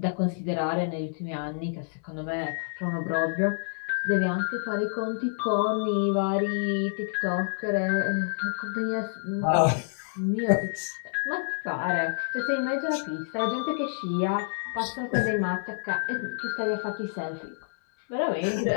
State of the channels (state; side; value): silent; right; 59 dB below the other